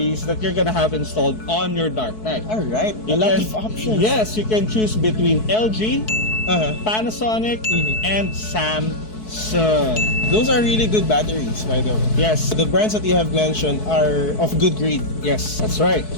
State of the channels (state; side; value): late; right; 4.6 ms